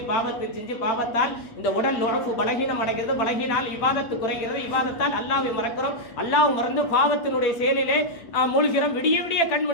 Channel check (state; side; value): late; right; 8.3 ms